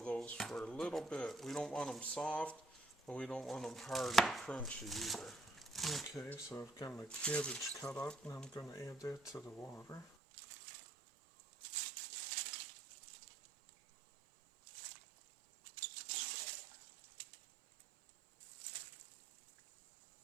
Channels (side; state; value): left; drops out; at 10.1 s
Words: for a little bit. We don't want them soft, but we don't want them hard and crunchy either. Okay, so I've got my cabbage cut up, and I'm going to add that to the water.